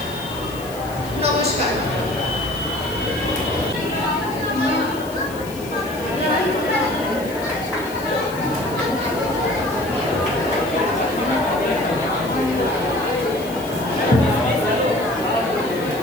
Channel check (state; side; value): noise; left; hiss, 17 dB below the sound